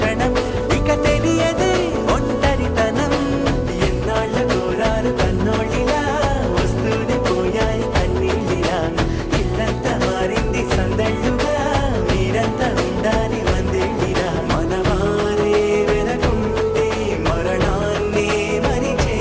ఇక తెలియదే ఒంటరితనం ఎన్నాళ్ళ కోరారు కన్నోళ్ళిలా వస్తూనే పోయాయి కన్నీళ్ళిలా ఇల్లంతా మారింది సందళ్ళుగా మీరంతా ఉండాలి వందేళ్ళిలా మనవారే వెనకుంటే మరణాన్ని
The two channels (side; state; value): both; identical; correlation 1.00